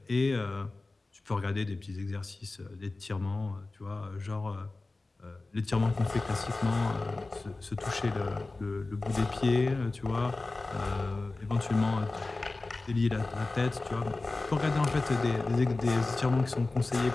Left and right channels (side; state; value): right; quieter; 3.3 dB